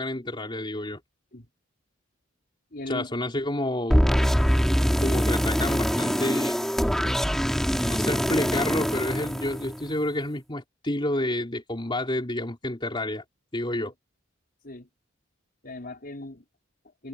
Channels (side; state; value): both; normal; correlation 0.84